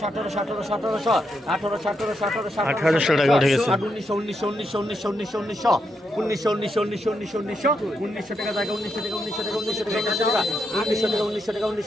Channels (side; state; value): both; normal; correlation 0.82